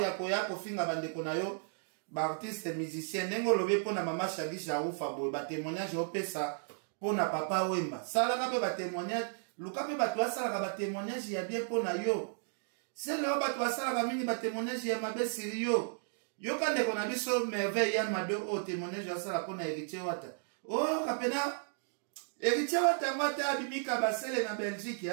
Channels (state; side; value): silent; left; digital silence